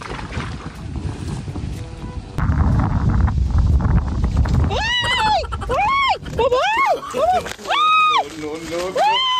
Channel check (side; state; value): both; identical; correlation 1.00